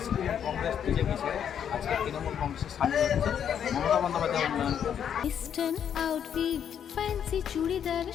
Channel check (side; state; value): right; quieter; 8.7 dB